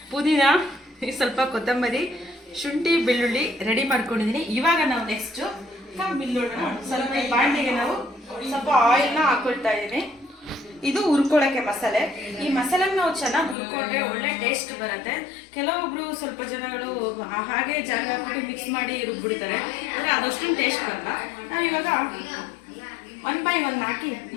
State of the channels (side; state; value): right; drops out; at 13.6 s